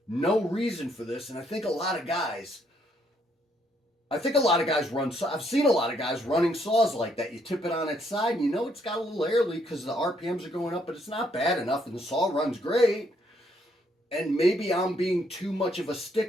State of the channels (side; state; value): both; normal; correlation 0.71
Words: no reason for this, and I think a lot of guys run, I've seen a lot of guys running saws like that. You tip it on its side, and you know it's got a little air leak because the RPMs are going up, but it's not bad enough, and the saw runs great. And maybe I'm being too much of a